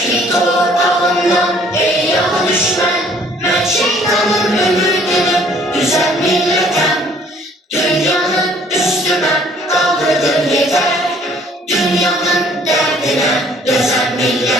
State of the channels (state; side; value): normal; both; correlation 0.58